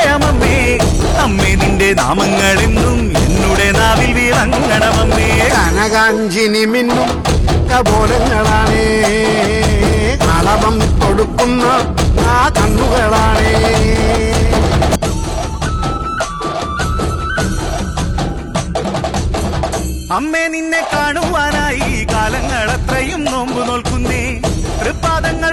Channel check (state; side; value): identical; both; correlation 1.00